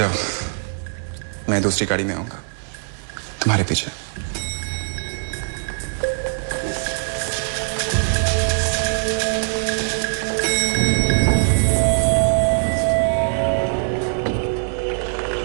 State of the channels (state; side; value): silent; left; digital silence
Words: मैं दूसरी गाड़ी में आऊंगा तुम्हारे पीछे।